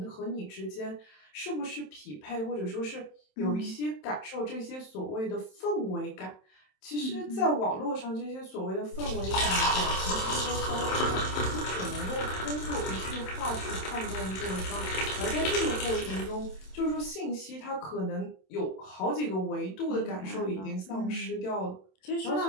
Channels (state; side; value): late; right; 27 ms